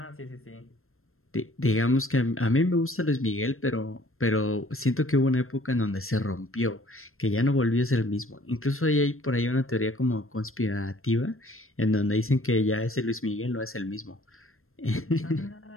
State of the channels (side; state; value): right; late; 0.62 ms